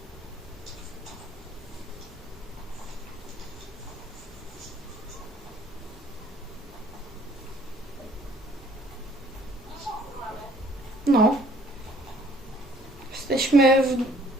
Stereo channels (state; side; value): normal; both; correlation 0.59